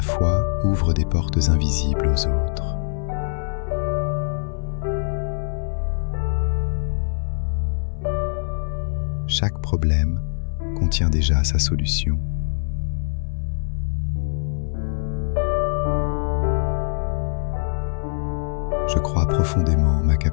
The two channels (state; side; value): silent; right; 62 dB below the other